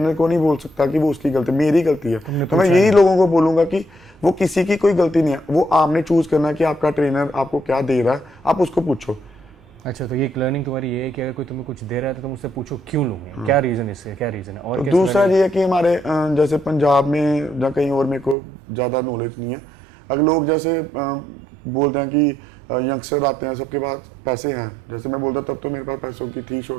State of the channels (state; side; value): drops out; left; at 18.4 s